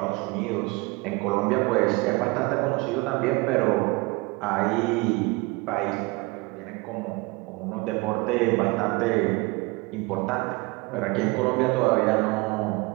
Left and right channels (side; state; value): left; quieter; 25.5 dB